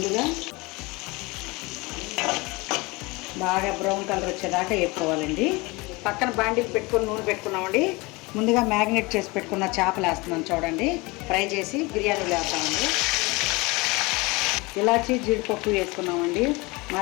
బాగా బ్రౌన్ కలర్ వచ్చేదాకా వేసుకోవాలండి. పక్కన బాండి పెట్టుకొని నూనె పెట్టుకున్నామండి. ముందుగా మ్యారినేట్ చేసి పెట్టుకున్న చేపలు వేస్తున్నాను చూడండి. ఫ్రై చేసి బిర్యానీలో వేస్తామండి. ఇలాచి జీడిపప్పు వేసుకున్నామండి.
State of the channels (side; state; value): right; quieter; 24.6 dB